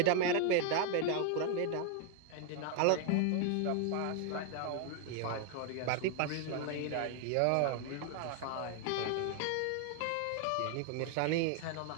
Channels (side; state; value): both; different; correlation 0.00